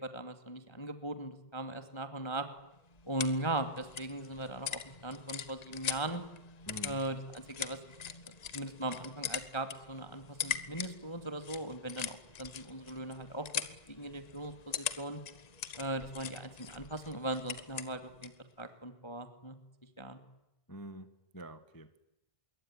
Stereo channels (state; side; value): late; right; 1.9 ms